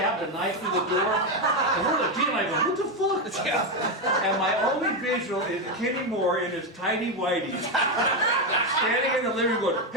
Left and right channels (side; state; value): both; normal; correlation 0.09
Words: knife through the door. And we're like, Gene and I go, what the fuck? Yeah. And my only visual is Kenny Moore in his tidy whities, standing in the living room going,